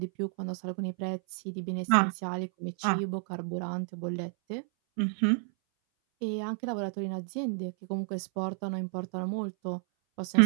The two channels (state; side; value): silent; left; 57 dB below the other